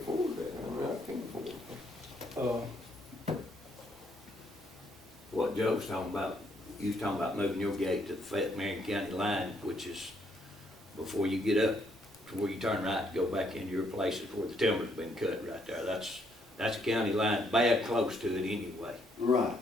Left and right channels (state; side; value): normal; both; correlation 0.71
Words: that, I mean, I can't afford it. What Joe was talking about, you was talking about moving your gate to the Fayette Marion County line, which is before you get up to where you turn right to go back into your places where the timber's been cut right there. That's a county line, bad close to it anyway. Right